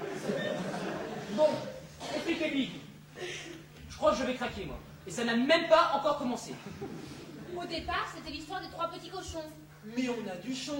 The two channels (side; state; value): both; identical; correlation 1.00